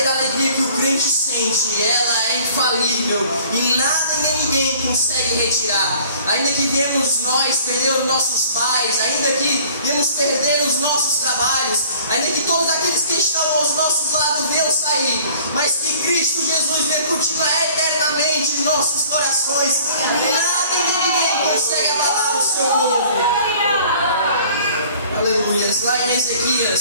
alegria que o crente sente, ela é infalível, e nada nem ninguém consegue retirar. Ainda que viemos nós perder os nossos pais, ainda que viemos perder os nossos trabalhos, ainda que todos aqueles que estão aos nossos lados venham sair, mas que Cristo Jesus venha continuar eternamente em nossos corações, nada e nem ninguém consegue abalar o seu povo. Aleluia. Lá em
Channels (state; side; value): inverted; both; correlation -0.52